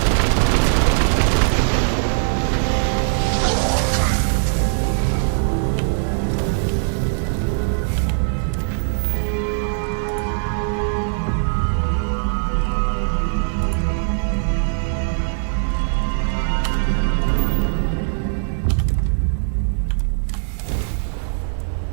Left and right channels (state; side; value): silent; left; 65 dB below the other